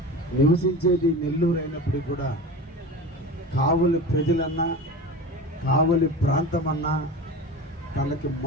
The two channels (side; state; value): both; normal; correlation 0.31